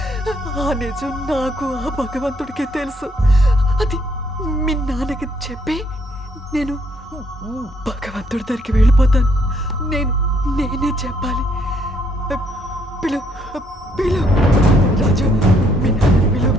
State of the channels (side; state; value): both; normal; correlation 0.69